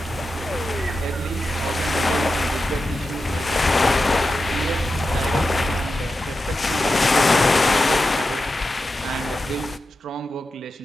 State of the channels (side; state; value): both; normal; correlation 0.91